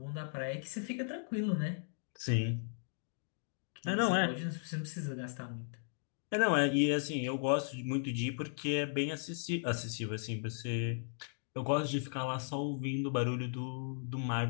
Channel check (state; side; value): silent; right; digital silence